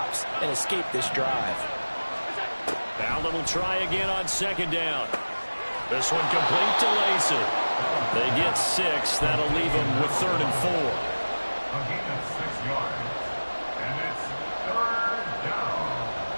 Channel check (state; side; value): inverted; both; correlation -1.00